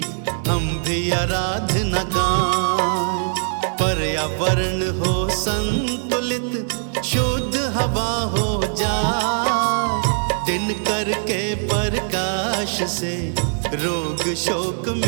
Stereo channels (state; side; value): silent; left; digital silence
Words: हम भी आराधना गाएं। पर्यावरण हो संतुलित शुद्ध हवा हो जाए। दिन करके प्रकाश से रोग शोक